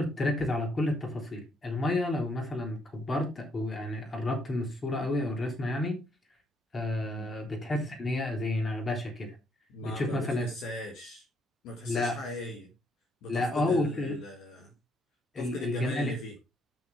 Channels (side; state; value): both; normal; correlation 0.72